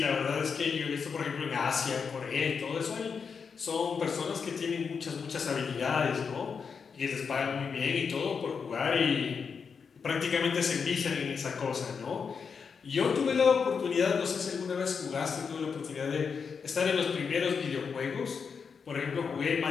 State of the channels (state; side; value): quieter; right; 5.9 dB